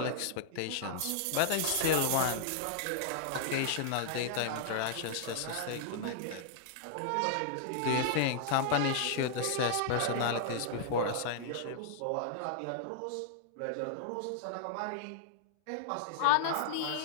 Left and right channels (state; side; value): different; both; correlation -0.01